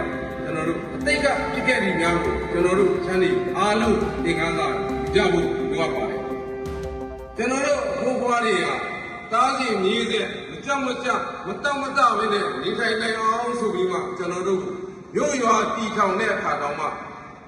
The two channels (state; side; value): identical; both; correlation 1.00